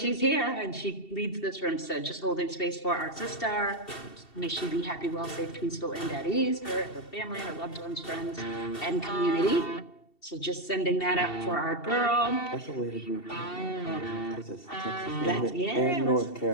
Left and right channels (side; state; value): right; late; 2.7 ms